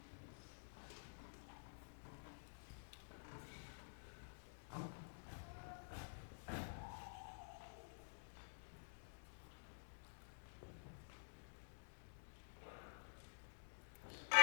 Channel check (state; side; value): silent; right; digital silence